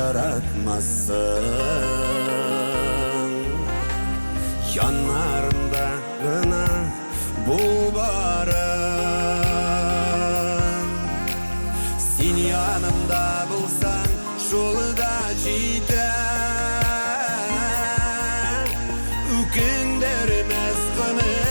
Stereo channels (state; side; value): inverted; both; correlation -1.00